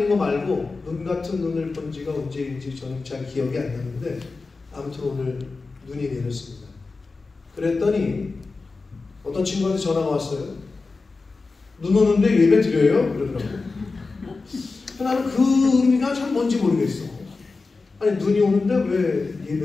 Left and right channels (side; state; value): right; quieter; 4.0 dB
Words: 거 말고 눈 같은 눈을 본 지가 언제인지 저는 잘 기억이 안 나는데, 아무튼 오늘 눈이 내렸습니다. 그랬더니 어떤 친구한테 전화가 왔어요. 눈 오는데 예배 드려요? 그러더라고요. 나는 그 의미가 참 뭔지 모르겠어. 아니, 눈이 오는데 왜